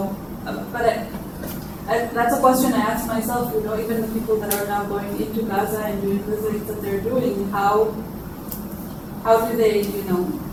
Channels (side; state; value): both; identical; correlation 1.00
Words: but that's a question I ask myself, even the people that are now going into Gaza and doing the things that they're doing, how do they,